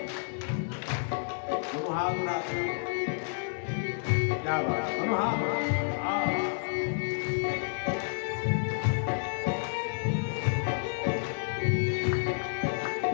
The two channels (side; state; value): right; silent; digital silence